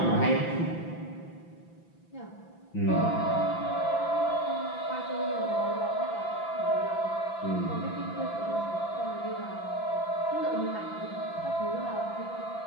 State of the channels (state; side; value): late; right; 5.9 ms